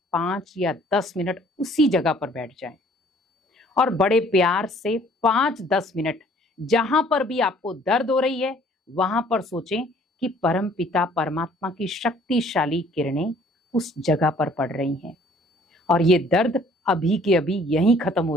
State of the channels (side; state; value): both; normal; correlation 0.57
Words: 5 या 10 मिनट उसी जगह पर बैठ जाएं और बड़े प्यार से 5-10 मिनट जहां पर भी आपको दर्द हो रही है वहां पर सोचें कि परम पिता परमात्मा की शक्तिशाली किरणें उस जगह पर पड़ रही हैं और ये दर्द अभी के अभी यहीं खत्म हो